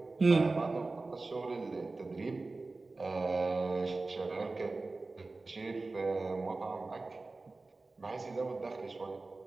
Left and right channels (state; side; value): quieter; left; 3.5 dB